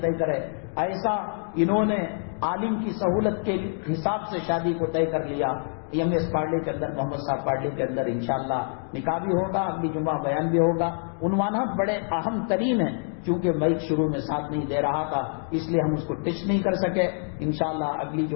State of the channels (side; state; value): right; silent; 61 dB below the other